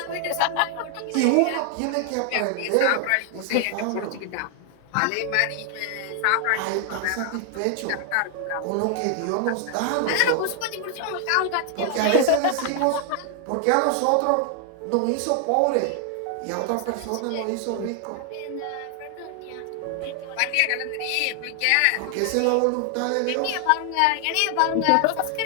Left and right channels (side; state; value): both; different; correlation 0.00